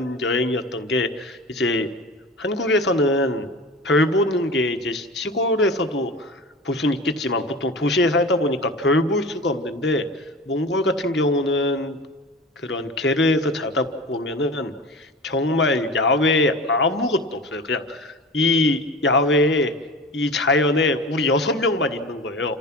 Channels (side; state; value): both; normal; correlation 0.34